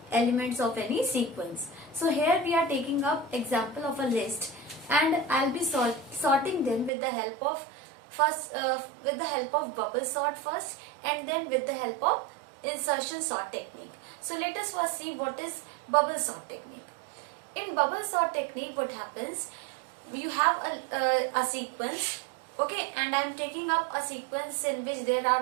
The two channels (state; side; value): drops out; left; at 6.9 s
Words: elements of any sequence. So here we are taking up example of a list, and I'll be sorting them with the help of bubble sort first, and then with the help of insertion sort technique. So let us first see what is bubble sort technique. In bubble sort technique, what happens? You have a sequence, okay, and I am taking up a sequence in which there are